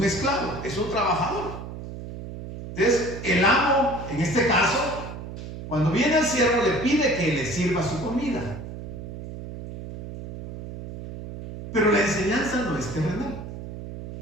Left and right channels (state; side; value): noise; right; hum, 10 dB below the sound